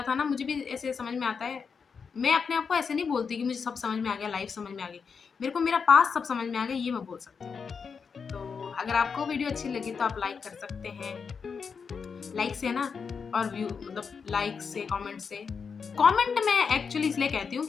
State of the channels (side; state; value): right; quieter; 5.8 dB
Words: था ना, मुझे भी ऐसे समझ में आता है। मैं अपने आप को ऐसे नहीं बोलती कि मुझे सब समझ में आ गया, लाइफ़ समझ में आ गई। मेरे को मेरा पास्ट सब समझ में आ गया, ये मैं बोल सकती हूँ। तो अगर आपको वीडियो अच्छी लगी तो आप लाइक कर सकते हैं। लाइक से ना और व्यू मतलब लाइक से, कमेंट से। कमेंट मैं एक्चुअली इसलिए कहती हूँ